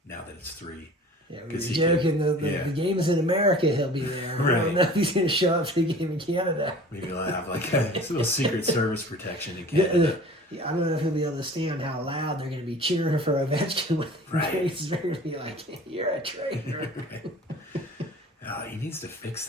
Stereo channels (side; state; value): both; normal; correlation 0.44